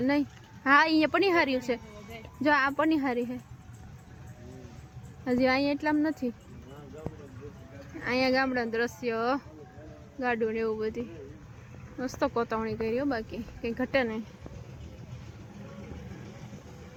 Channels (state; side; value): identical; both; correlation 1.00